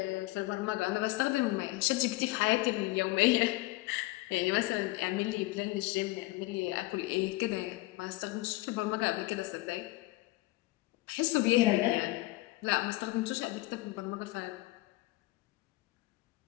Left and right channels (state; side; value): quieter; right; 20.3 dB